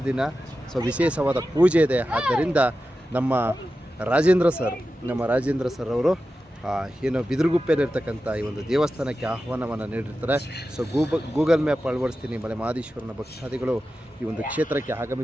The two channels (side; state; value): both; normal; correlation 0.92